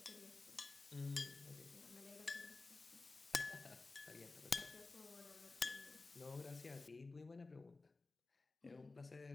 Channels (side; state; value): right; quieter; 3.5 dB